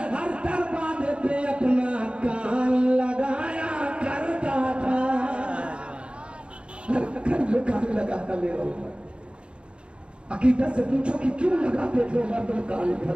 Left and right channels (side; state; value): left; late; 0.056 ms